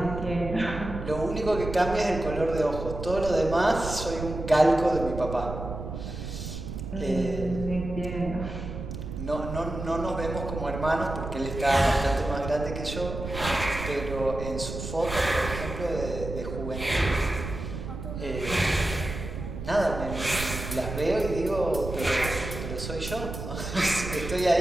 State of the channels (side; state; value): right; noise; rumble, 7 dB below the sound